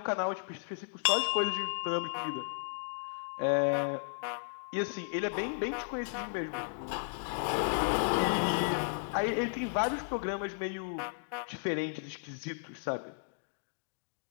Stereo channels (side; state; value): right; silent; digital silence